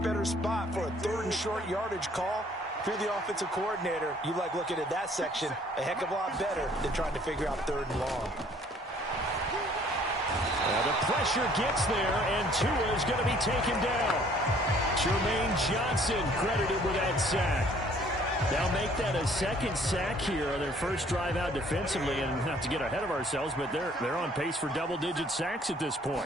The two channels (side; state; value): both; normal; correlation 0.58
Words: better spot for a 3rd and short yardage call. If you're the offensive coordinator, you like looking at that section a heck of a lot better than trying to figure out 3rd and long. The pressure gets there, and Tua is going to be taken down. Jermaine Johnson credited with that sack. They'll make that a 2nd sack here on their first drive out defensively, and not to get ahead of ourselves, but they're on pace for double-digit sacks at this